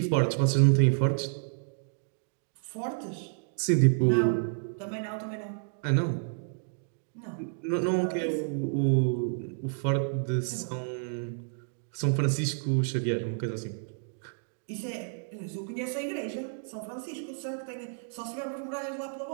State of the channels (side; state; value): left; silent; digital silence